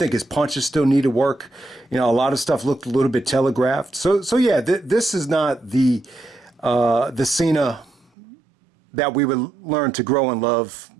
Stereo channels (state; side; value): drops out; left; at 8.1 s